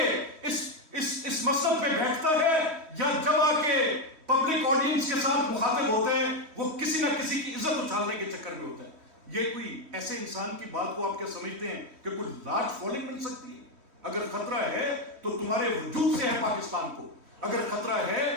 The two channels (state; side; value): late; left; 3.1 ms